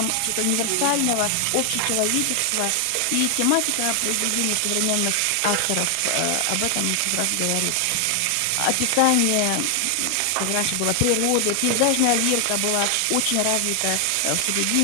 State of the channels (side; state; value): both; different; correlation 0.00